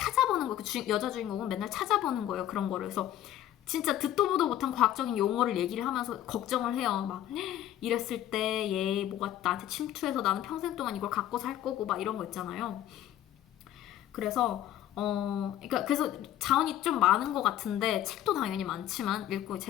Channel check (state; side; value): quieter; right; 12.3 dB